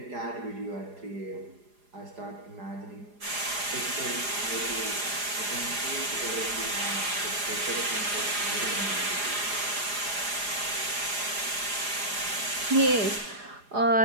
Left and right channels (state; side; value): late; left; 4.9 ms